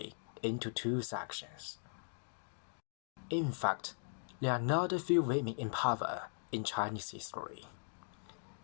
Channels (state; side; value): silent; right; digital silence